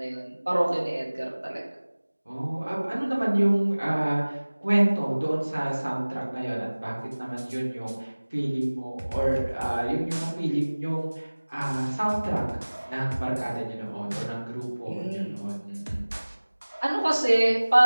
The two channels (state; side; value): inverted; both; correlation -1.00